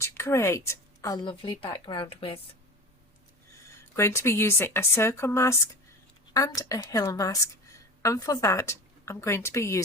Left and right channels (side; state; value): both; normal; correlation 0.33